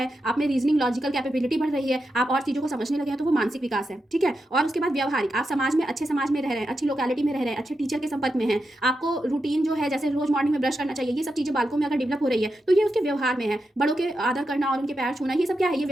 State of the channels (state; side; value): normal; both; correlation 0.87